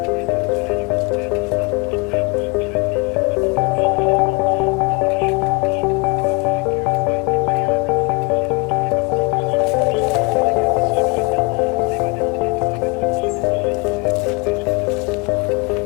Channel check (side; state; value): right; quieter; 28.6 dB